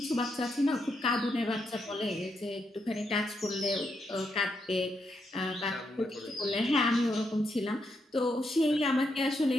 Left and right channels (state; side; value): normal; both; correlation 0.80